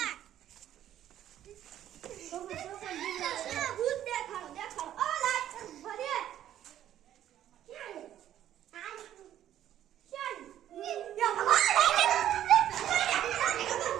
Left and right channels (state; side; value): quieter; left; 11.6 dB